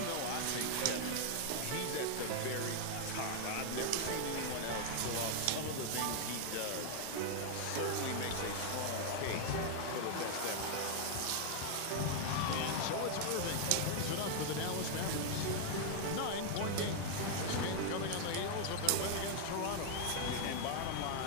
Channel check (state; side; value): different; both; correlation 0.00